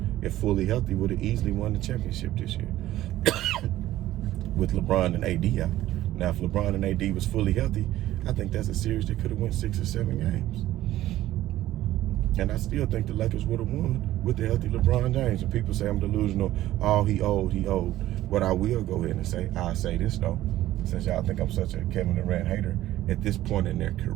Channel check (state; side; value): quieter; left; 14.6 dB